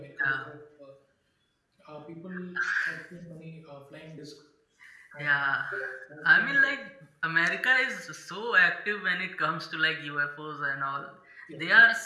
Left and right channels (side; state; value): both; identical; correlation 1.00